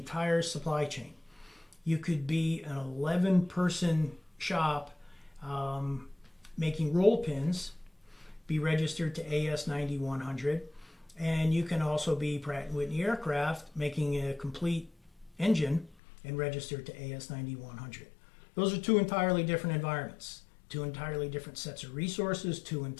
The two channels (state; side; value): drops out; right; at 16.0 s